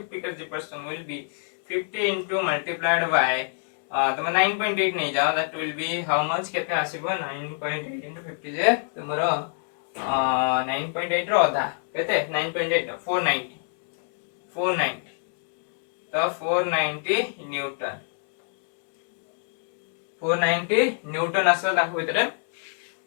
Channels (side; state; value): right; silent; digital silence